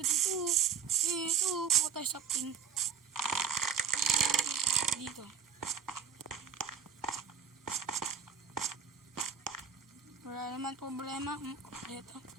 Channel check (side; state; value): left; quieter; 7.1 dB